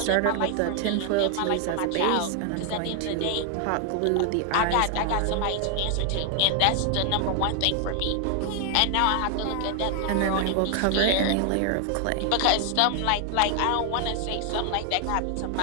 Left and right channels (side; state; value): both; different; correlation 0.00